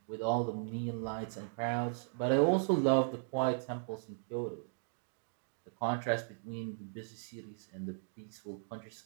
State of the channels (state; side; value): silent; left; digital silence